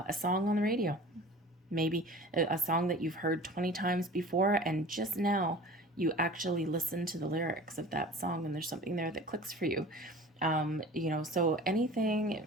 song on the radio, maybe a song that you've heard 20 times before, and just now you actually listen to the lyrics of that song and there's something there that clicks for you. So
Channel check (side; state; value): both; normal; correlation 0.41